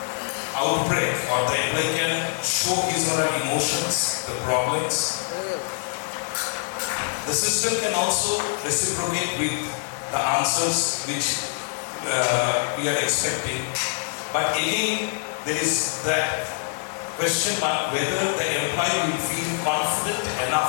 outbreak, or the employee can show his or her emotions, the problems. The system can also reciprocate with the answers which we are expecting. But again, there is that question mark whether the employee will feel confident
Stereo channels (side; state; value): right; silent; digital silence